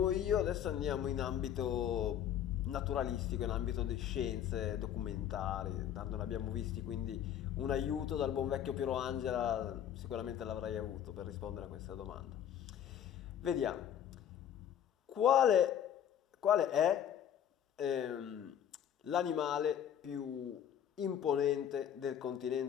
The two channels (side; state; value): right; quieter; 9.8 dB